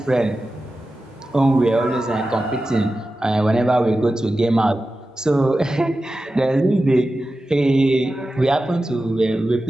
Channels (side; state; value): both; normal; correlation 0.93